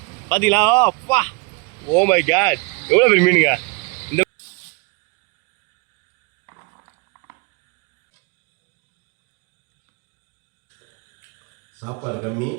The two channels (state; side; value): quieter; left; 30.1 dB